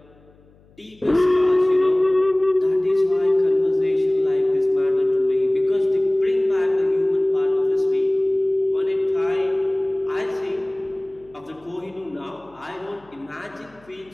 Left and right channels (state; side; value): noise; left; hum, 29 dB below the sound